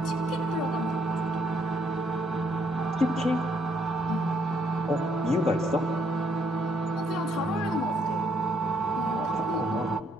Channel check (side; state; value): both; normal; correlation 0.70